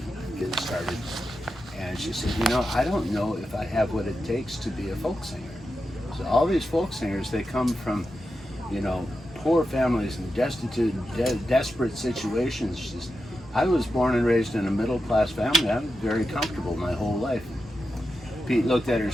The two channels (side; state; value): both; normal; correlation 0.89